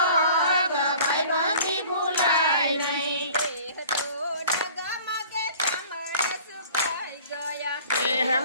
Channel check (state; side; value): inverted; both; correlation -0.47